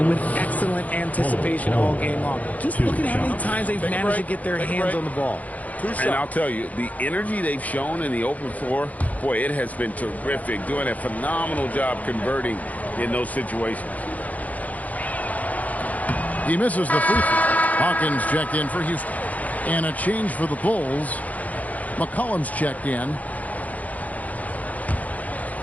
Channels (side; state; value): right; late; 0.074 ms